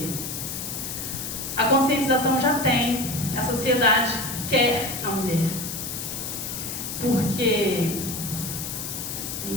A conscientização já tem, a sociedade quer a mulher. Porque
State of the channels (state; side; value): noise; left; hiss, 6 dB below the sound